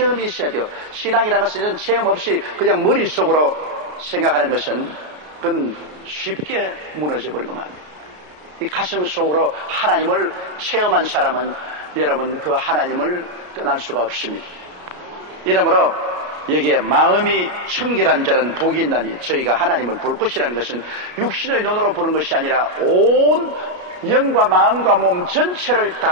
있어야 돼요. 신앙이라는 것은 이런 체험 없이 그냥 머릿속으로 생각하는 것은 그건 쉽게 무너져 버리고 말입니다. 이 가슴 속으로 하나님을 체험한 사람은 여러분 그 하나님을 떠날 수가 없습니다. 이러므로 여기에 마음이 청결한 자는 복이 있나니 저희가 하나님을 볼 것이라는 것은 육신의 눈으로 보는 것이 아니라 온 영과 마음과 몸 전체를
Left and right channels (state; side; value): late; left; 33 ms